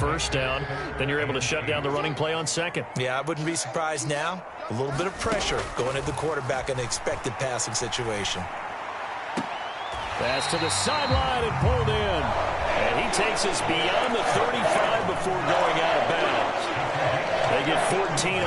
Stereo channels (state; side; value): identical; both; correlation 1.00